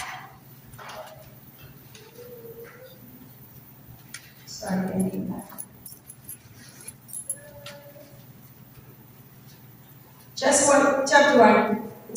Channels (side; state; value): both; identical; correlation 1.00